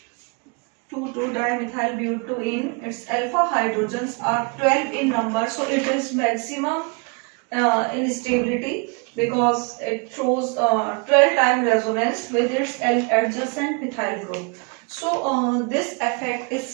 2,2-dimethyl butene. Its alpha hydrogens are 12 in number. So it is maximum in stability because it shows 12 time resonance with its adjacent methyl group. So this effect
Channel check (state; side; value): quieter; left; 32.9 dB